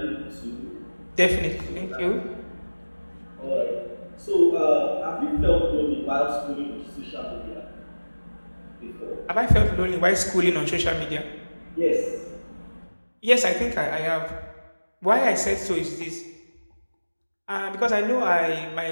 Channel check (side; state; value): both; inverted; correlation -1.00